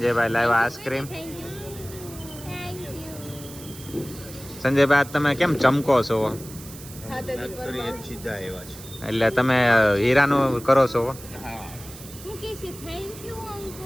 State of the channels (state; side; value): noise; right; hiss, 16 dB below the sound